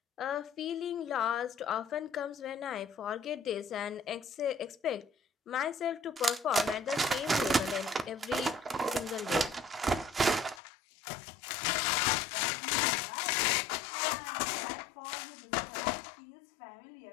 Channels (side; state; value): right; drops out; at 10.6 s